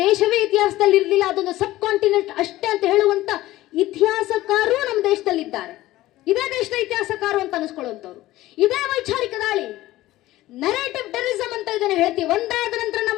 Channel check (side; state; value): right; quieter; 16.3 dB